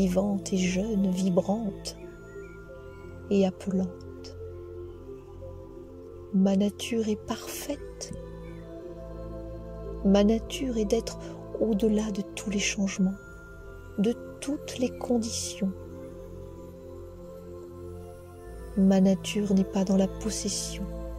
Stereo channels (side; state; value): both; identical; correlation 1.00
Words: et jeune, vibrante et appelante. Ma nature est parfaite. Ma nature est d'être au-delà de tous les changements, de toutes les conditions. Ma nature n'est pas dans la possession,